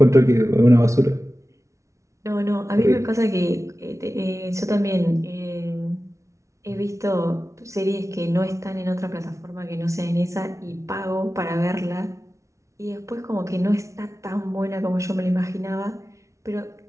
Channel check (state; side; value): late; left; 0.14 ms